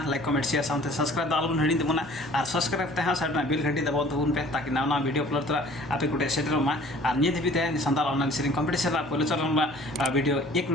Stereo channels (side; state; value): both; normal; correlation 0.51